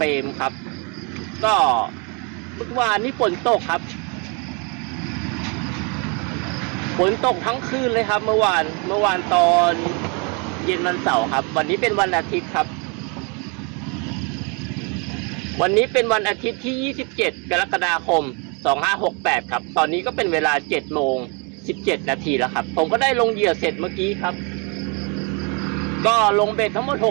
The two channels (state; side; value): quieter; left; 33.3 dB